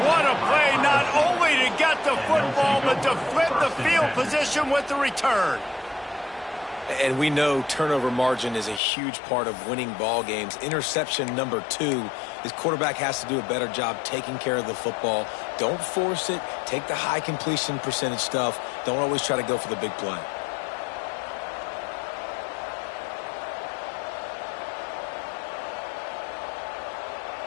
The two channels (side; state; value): right; drops out; at 8.8 s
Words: what a play, not only to get the football, but to flip the field position with the return. And we know turnover margin is a huge part of winning ball games. Interception number 2. His quarterback has to do a better job taking care of the football. Don't force it. Take the high completion percentage stuff. Don't always try to go for the big play.